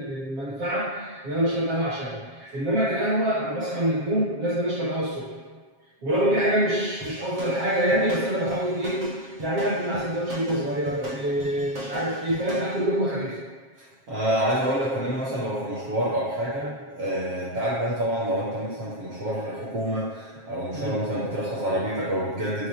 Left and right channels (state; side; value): late; left; 7.4 ms